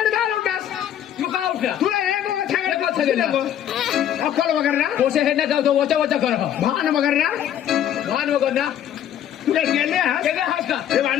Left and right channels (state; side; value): quieter; right; 10.4 dB